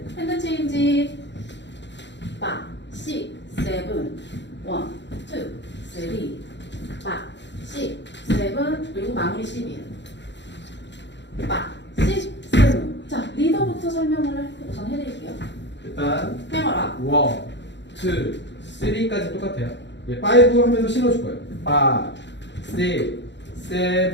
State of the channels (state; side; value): late; right; 0.52 ms